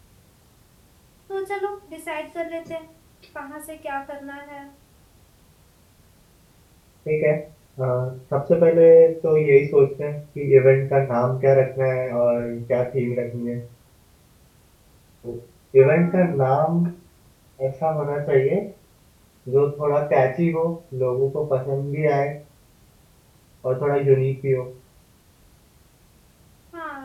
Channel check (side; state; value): both; identical; correlation 1.00